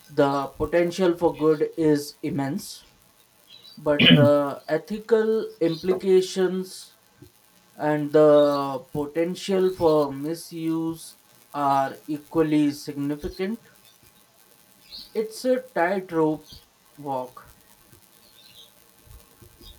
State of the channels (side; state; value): both; identical; correlation 1.00